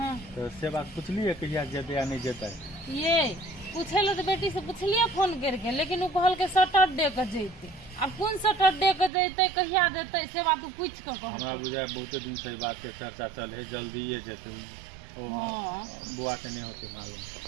तो से बात पुछलिए कहिया जेते या नहीं जेते? ये पूछे लो तो बेटी से पूछलिए फोन करके लेकिन उ कहल के सैटरडे के जैते। अब कौन सैटरडे के जैते कहिया देते से बात उ पूछ के कह। हमरा बुझाय बहुत दिन से बात के चर्चा चल है जल्दी ये जेते ओ बुआ के नहीं होते मालूम।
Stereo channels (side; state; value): left; drops out; at 9.1 s